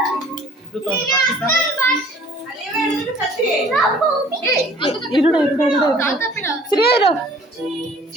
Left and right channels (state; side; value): normal; both; correlation 0.53